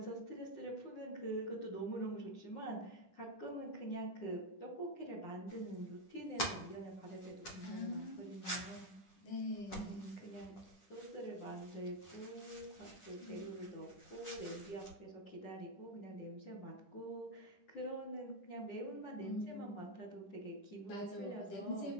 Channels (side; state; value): right; late; 10 ms